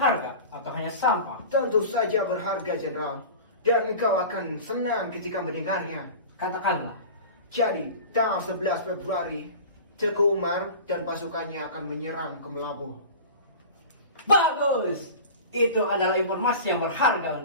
atau hanya sampah? Tentu saja berharga, Jenderal. Dan engkau akan senang ketika mendengarnya. Katakanlah. Jadi, tanggal 11 Februari, Teguh Umar dan pasukannya akan menyerang ke Melabuh. Bagus! Itu adalah informasi yang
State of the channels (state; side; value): inverted; both; correlation -0.36